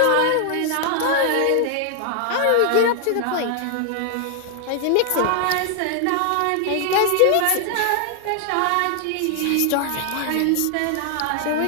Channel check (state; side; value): different; both; correlation 0.00